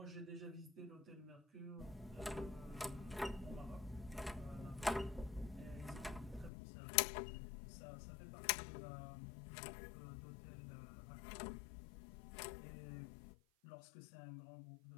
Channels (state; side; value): drops out; right; at 6.5 s